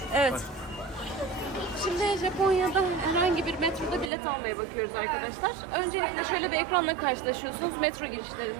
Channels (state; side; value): drops out; left; at 4.1 s